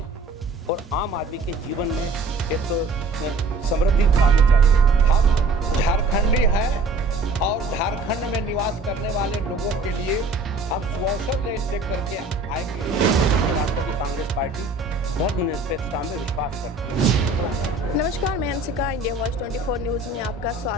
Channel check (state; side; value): quieter; left; 3.2 dB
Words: और आम आदमी के जीवन में एक समृद्धि आनी चाहिए। हम झारखंडी हैं और झारखंड में निवास करने वाले लोगों के लिए हम सुअवसर ले करके आएंगे। राष्ट्रवादी कांग्रेस पार्टी धर्मनिरपेक्षता में विश्वास करती है। नमस्कार, मैं हंसिका, इंडिया वॉइस 24 न्यूज़ में आपका